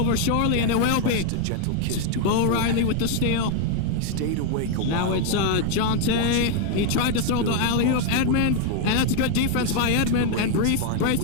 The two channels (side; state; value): both; different; correlation 0.00